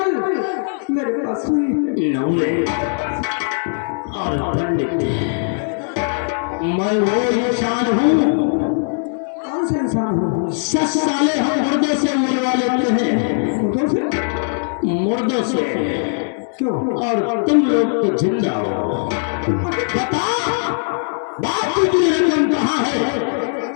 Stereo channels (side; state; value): right; silent; digital silence